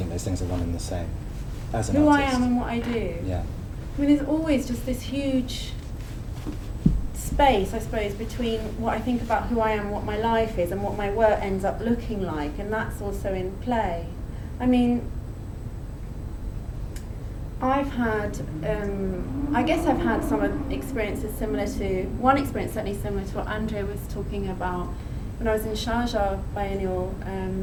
those things are one and the same as an Who artist? I am and what I do. Yeah. I mean, there's always just this huge space, I suppose, between what I think about who I am, what my life is, and what my work ends up looking like, and that's also in play. I mean, I guess I've had some experiences one experience certainly similar to what Andrea was talking about when I was in Sharjah Biennial,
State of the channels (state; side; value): identical; both; correlation 1.00